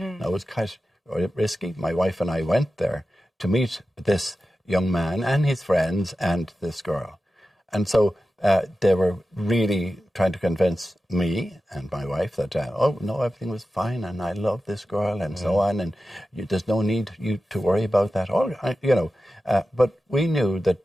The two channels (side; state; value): both; normal; correlation 0.93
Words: Now, it was quite risky. My wife and I went there to meet this young man and his friends and this girl. And so they were really trying to convince me and my wife that, everything was fine and I love this girl and so on, and there's no need you to worry about that. But we knew that